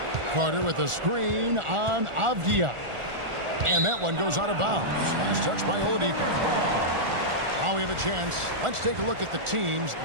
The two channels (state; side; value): late; left; 1.4 ms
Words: Carter with a screen on Avdia. And that one goes out of bounds. Last touch by Oladipo. Now we have a chance. Let's take a look at the teams